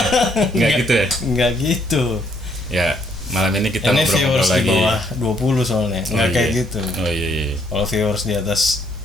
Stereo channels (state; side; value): normal; both; correlation 0.69